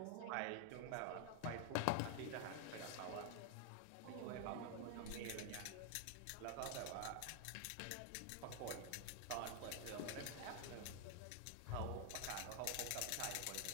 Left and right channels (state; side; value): different; both; correlation 0.00